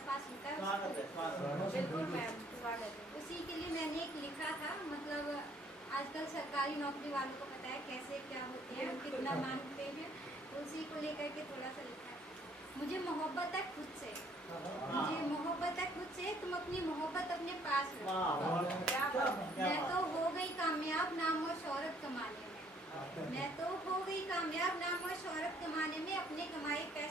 होता है बिल्कुल मैम, स्वागत है। उसी के लिए मैंने एक लिखा था। मतलब आजकल सरकारी नौकरी वालों को पता है कैसे क्या होते हैं, कितना मांगते हैं, तो उसी को लेकर के थोड़ा सा लिखा है। मुझे मोहब्बत है खुद से, मुझे मोहब्बत है खुद से, तुम अपनी मोहब्बत अपने पास रखो। मैं तो हो गई कामयाब नाम और शोहरत कमाने में, मैं तो हो गई कामयाब नाम और शोहरत कमाने में, अपने कमाए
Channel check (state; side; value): normal; both; correlation 0.63